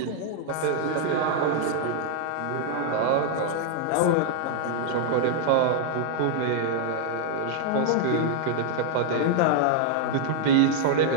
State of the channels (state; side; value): different; both; correlation -0.01